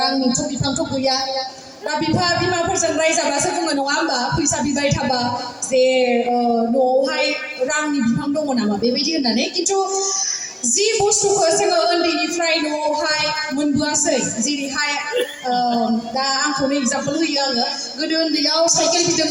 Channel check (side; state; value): both; identical; correlation 1.00